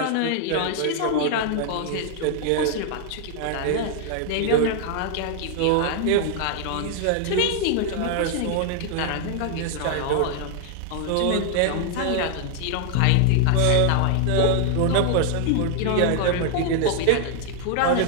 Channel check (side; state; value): both; different; correlation 0.00